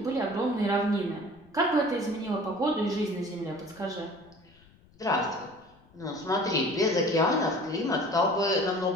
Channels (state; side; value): noise; left; rumble, 28 dB below the sound